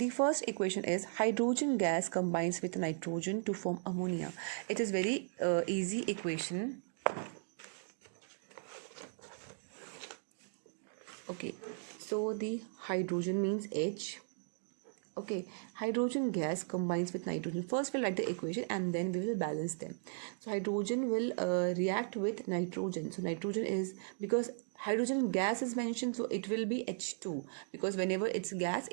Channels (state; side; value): silent; left; digital silence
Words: first equation is hydrogen gas combines with nitrogen to form ammonia. It is very easy equation. Okay, so the hydrogen means H. Okay, hydrogen gas combines with nitrogen. First we'll write the equation and then we will balance them. So hydrogen will react with nitrogen. So nitrogen is, because hydrogen gas is mentioned, so it will be H2, because whenever it's gas,